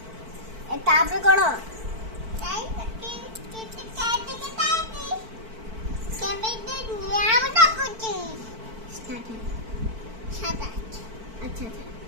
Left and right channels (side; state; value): left; late; 4.5 ms